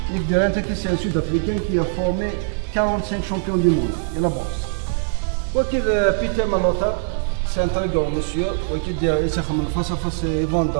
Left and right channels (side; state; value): left; silent; 62 dB below the other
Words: Nick Durant, c'est un Sud-Africain qui a formé 45 champions du monde de la boxe. Peter Malota, c'est un très grand monsieur. Il est face à face dans